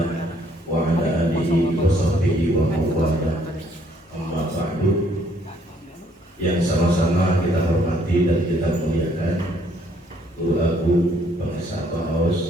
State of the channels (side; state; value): both; normal; correlation 0.65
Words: wa ala alihi wa sahbihi wa mawala. Amma ba'du. Yang sama-sama kita hormati dan kita muliakan Guru Agung Bang Esa